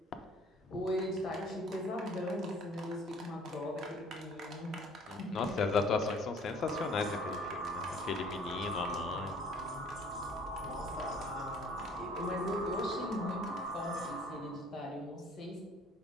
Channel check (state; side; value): normal; both; correlation 0.54